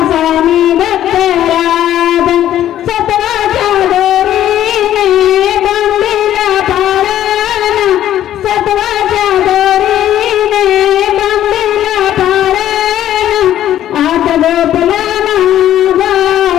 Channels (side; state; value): right; quieter; 12.0 dB